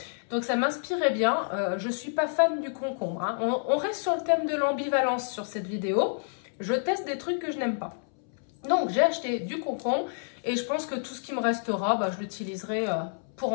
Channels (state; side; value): silent; right; 59 dB below the other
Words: Donc ça m'inspirait bien. Je ne suis pas fan du concombre. Hein. On reste sur le thème de l'ambivalence sur cette vidéo. Je teste des trucs que je n'aime pas. Donc j'ai acheté du concombre et je pense que tout ce qui me restera, je l'utiliserai pour